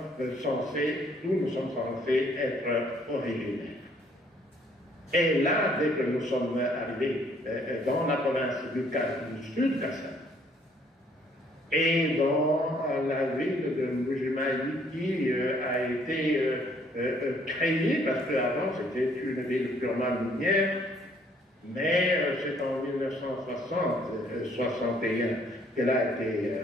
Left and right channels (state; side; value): normal; both; correlation 0.64